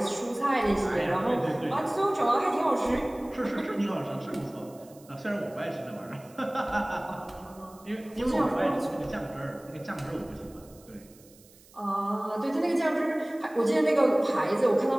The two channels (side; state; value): right; noise; hiss, 26 dB below the sound